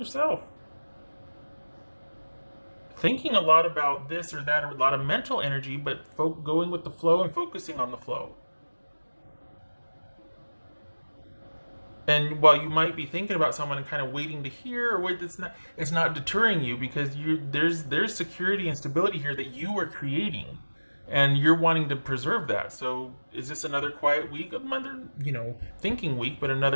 thinking a lot about this or that, or a lot of mental energy, but going with the flow and focusing on the flow. And while you might be thinking about someone and kind of waiting to hear, or wait, it's not deterring you, because there's security and stability here that you are creating, and you're wanting to preserve that. So is this another quiet week, another thinking week, but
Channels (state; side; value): inverted; both; correlation -1.00